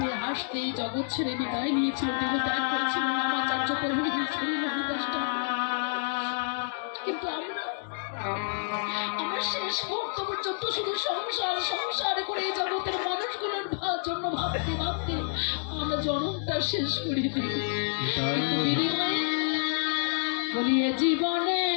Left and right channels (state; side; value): silent; right; digital silence